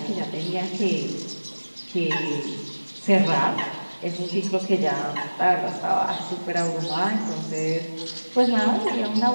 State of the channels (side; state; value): both; inverted; correlation -1.00